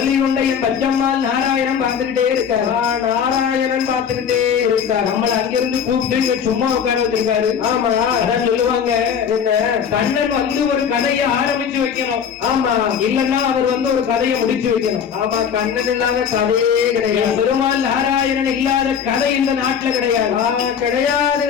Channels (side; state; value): right; quieter; 7.6 dB